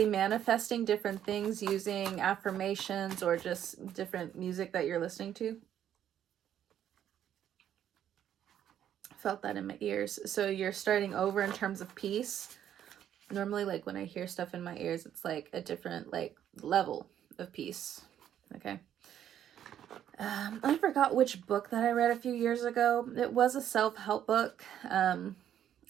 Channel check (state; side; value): quieter; left; 10.4 dB